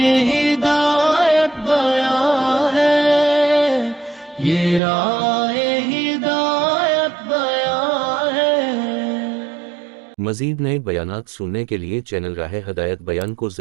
ہدایت بیان ہے، یہ راہ ہدایت بیان ہے۔ مزید نئے بیانات سننے کے لیے چینل راہ ہدایت بیان کو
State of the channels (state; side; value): drops out; left; at 4.8 s